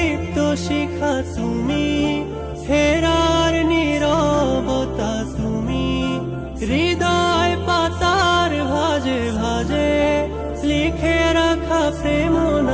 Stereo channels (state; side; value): identical; both; correlation 1.00